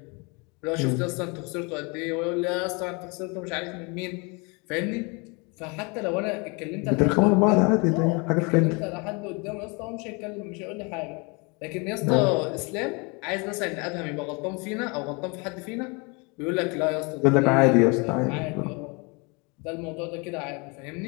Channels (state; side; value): quieter; right; 30.4 dB